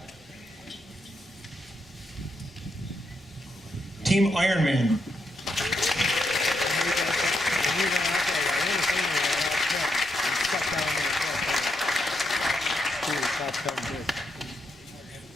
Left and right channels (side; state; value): both; normal; correlation 0.81